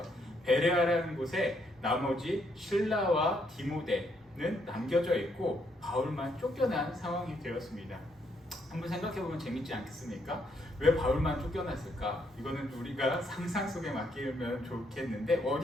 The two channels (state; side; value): normal; both; correlation 0.73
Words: 베레아라는 곳에 나머지 실라와 디모데는 남겨져 있고 바울만 쫓겨난 상황이 되었습니다. 한번 생각해보면 재밌지 않겠습니까? 왜 바울만 쫓겨났을까? 이거는 우리가 상상 속에 맡기면 좋겠는데